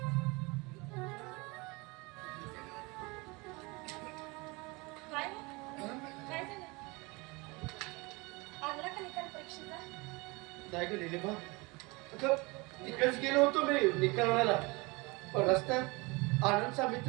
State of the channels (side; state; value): left; quieter; 25.9 dB